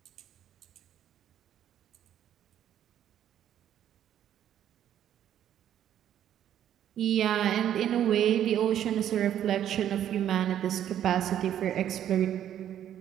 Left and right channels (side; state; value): left; quieter; 10.6 dB